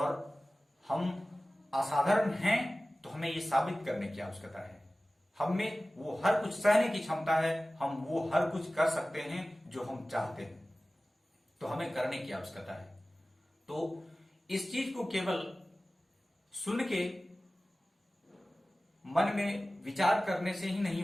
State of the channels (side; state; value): both; normal; correlation 0.97